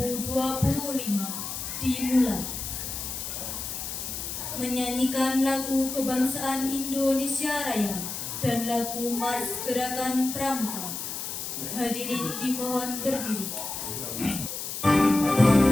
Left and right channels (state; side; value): noise; left; hiss, 6 dB below the sound